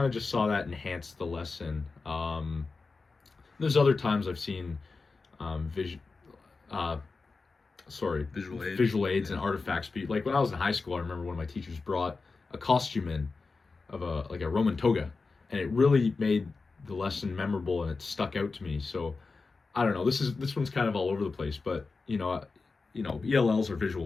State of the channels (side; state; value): right; quieter; 4.1 dB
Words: of just saw that enhance the lesson. There's other times I've seen vision visual aids and artifacts be like when I was in high school. I remember one of my teachers brought a costume in of a Roman toga, and it really made the lesson memorable, and it stuck out to me. So I don't know, this one's kind of all over the place, but ELLs are visual